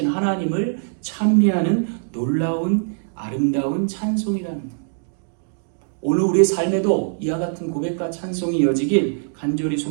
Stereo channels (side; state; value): left; silent; digital silence